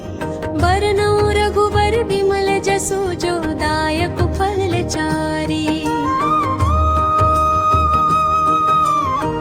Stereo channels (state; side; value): identical; both; correlation 1.00